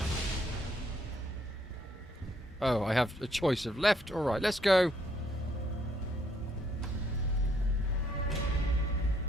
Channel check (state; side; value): normal; both; correlation 0.70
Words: Oh, I have a choice of left or right. Let's go.